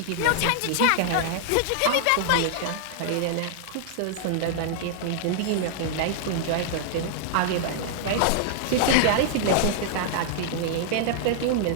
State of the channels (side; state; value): both; different; correlation -0.01